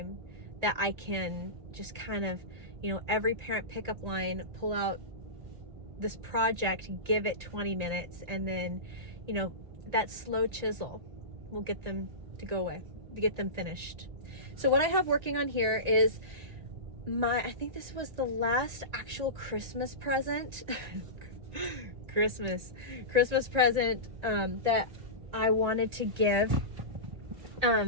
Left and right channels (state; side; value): late; left; 1.9 ms